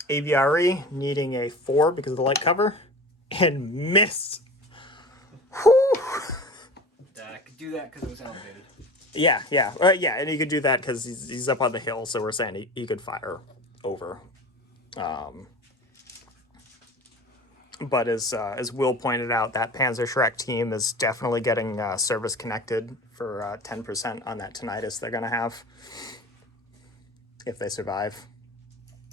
AVRE, needing a 4 because of the light cover, and missed. Whew. I could do that because it was elevated. Yeah, and he could do that because he's up on the hill, so we're saying he could fire over. But as Will pointed out, that Panzer Shrek team is definitely getting service connected for 10% on that tinnitus they're going to have if they survive.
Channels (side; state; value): both; normal; correlation 0.36